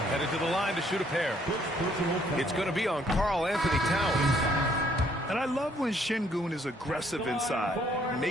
headed to the line to shoot a pair. It's going to be on Karl Anthony Towns. And I love when Şengün is aggressive inside,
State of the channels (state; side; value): normal; both; correlation 0.66